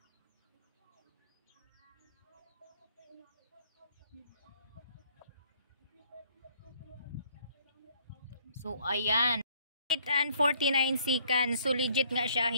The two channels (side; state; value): both; inverted; correlation -0.62